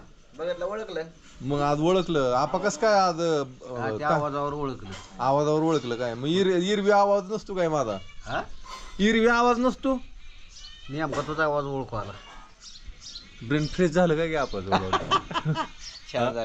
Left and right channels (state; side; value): identical; both; correlation 1.00